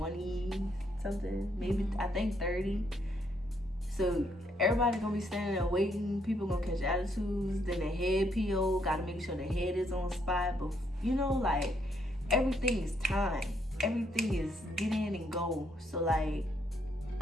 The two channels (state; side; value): normal; both; correlation 0.73